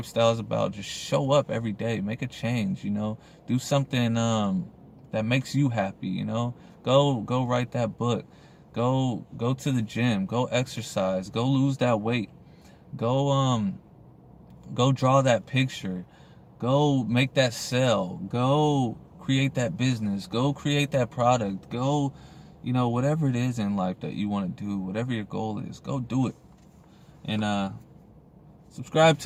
is about. Just show up every day. Make a change. You know, do something that makes you happy. You know, go write that book. Go to the gym. Go exercise. Go lose that weight. Go draw that picture. Go make that sale. Go create that business. Go create that product. Go, you know, whatever it is in life that you want to do, whatever your goal is, go do it. And subscribe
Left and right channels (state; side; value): identical; both; correlation 1.00